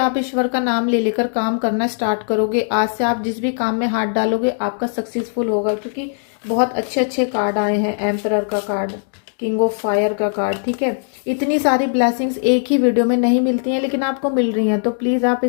ईश्वर का नाम ले लेकर काम करना स्टार्ट करोगे, आज से आप जिस भी काम में हाथ डालोगे आपका सक्सेसफुल होगा, क्योंकि बहुत अच्छे अच्छे कार्ड आए हैं। एम्परर का कार्ड, किंग ऑफ फायर का कार्ड, ठीक है। इतनी सारी ब्लेसिंग्स एक ही वीडियो में नहीं मिलती हैं, लेकिन आपको मिल रही हैं, तो प्लीज़ आप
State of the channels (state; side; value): silent; right; digital silence